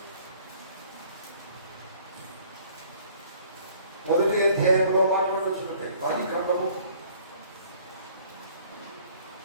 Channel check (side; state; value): both; inverted; correlation -0.56